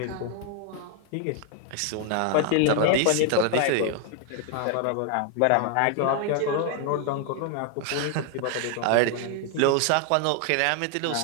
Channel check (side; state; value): both; different; correlation 0.00